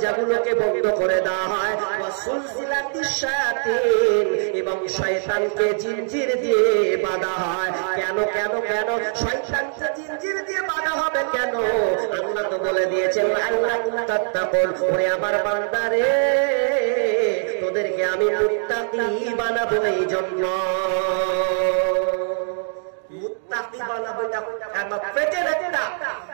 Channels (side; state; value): left; silent; digital silence